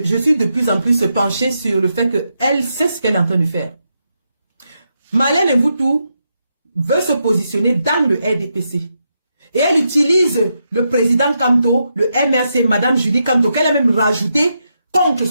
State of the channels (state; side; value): inverted; both; correlation -0.83